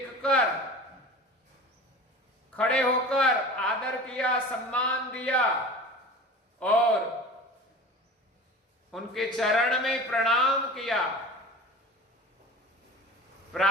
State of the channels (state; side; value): normal; both; correlation 0.37